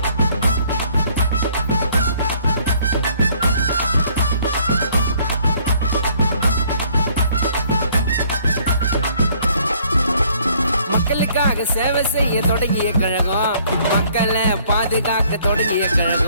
மக்களுக்காக சேவை செய்ய தொடங்கிய கழகம், மக்களை பாதுகாக்க தொடங்கிய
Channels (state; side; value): inverted; both; correlation -0.61